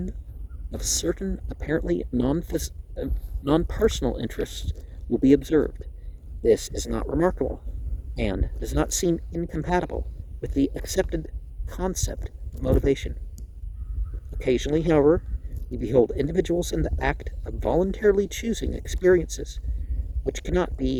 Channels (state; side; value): identical; both; correlation 1.00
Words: of certain apparently non-personal interests will be observed. This is not remarkable, and does not seem incompatible with the accepted concept of motivation. Occasionally, however, we behold individuals in the act of voluntarily choosing experiences which cannot